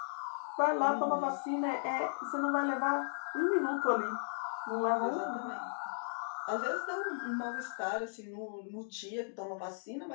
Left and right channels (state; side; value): silent; right; digital silence